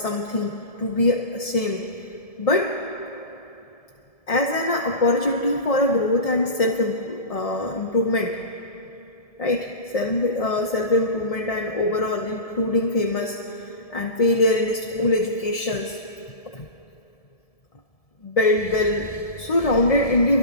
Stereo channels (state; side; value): late; right; 1.7 ms